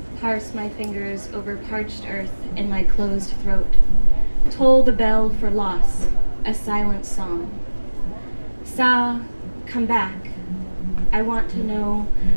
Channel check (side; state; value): both; inverted; correlation -1.00